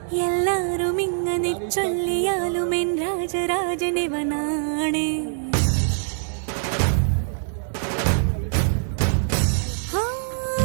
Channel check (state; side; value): silent; left; digital silence